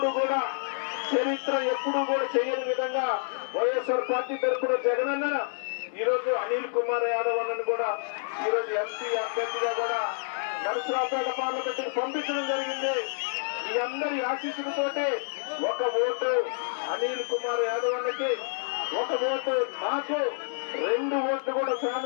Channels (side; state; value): right; silent; 59 dB below the other